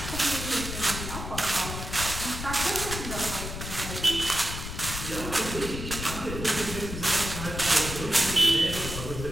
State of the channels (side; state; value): left; noise; rumble, 7 dB below the sound